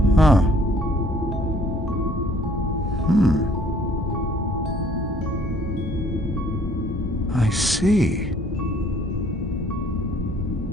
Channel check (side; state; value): both; normal; correlation 0.59